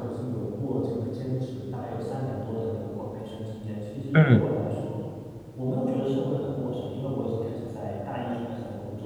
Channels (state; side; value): identical; both; correlation 1.00